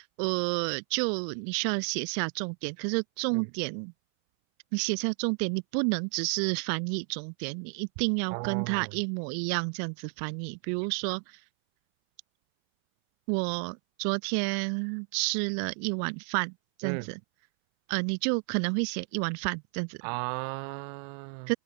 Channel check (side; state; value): left; silent; 57 dB below the other